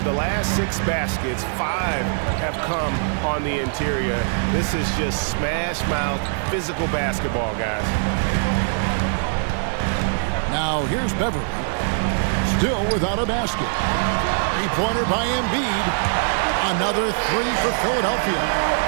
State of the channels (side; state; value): left; silent; 60 dB below the other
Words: the last 6 baskets, 5 have come on the interior. This is just smash-mouth physical basketball, guys. Now here's Beverly. Still without a basket. 3-pointer by Embiid. Another 3 for Philadelphia.